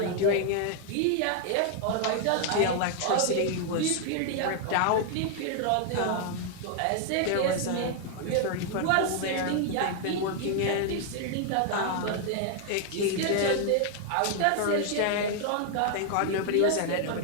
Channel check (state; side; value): different; both; correlation 0.00